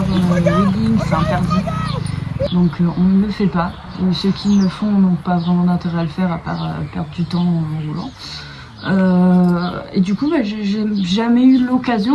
wheeling, c'est interdit. Donc on ne le fait pas. Et ceux qui le font n'ont pas vraiment d'intérêt à le faire à part perdre du temps en roulant. Et du coup j'ai jamais eu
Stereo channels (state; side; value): identical; both; correlation 1.00